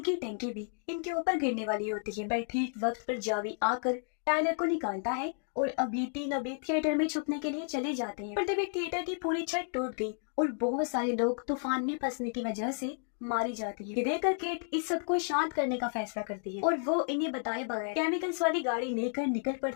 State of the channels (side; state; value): right; silent; 56 dB below the other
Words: की टंकी भी इनके ऊपर गिरने वाली होती है। पर ठीक वक्त पर जावी आकर टाइलर को निकालता है और अब ये तीनों भी थिएटर में छुपने के लिए चले जाते हैं। पर तभी थिएटर की पूरी छत टूट गई और बहुत सारे लोग तूफान में फंसने की वजह से मारी जाती है। ये देखकर केट इस सब को शांत करने का फैसला करती है और वो इन्हें बताए बगैर केमिकल्स वाली गाड़ी लेकर निकल